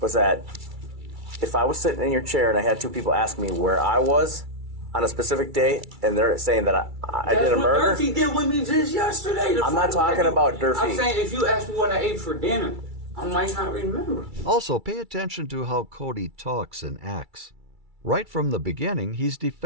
Was that if I was sitting in your chair and I had 2 people ask me where I was on a specific day, and they're saying that I did a murder. That's what Durfee did with me just yesterday. I'm not talking about Durfee. I'm saying if you ask me what I ate for dinner, I might not remember. Also, pay attention to how Cody talks and acts. Right from the beginning, he's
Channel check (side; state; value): left; late; 2.3 ms